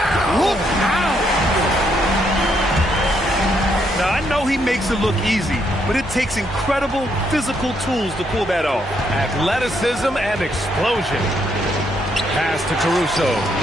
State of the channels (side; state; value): both; normal; correlation 0.74